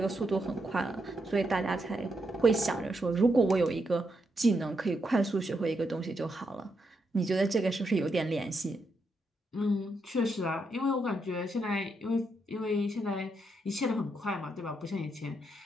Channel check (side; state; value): both; normal; correlation 0.81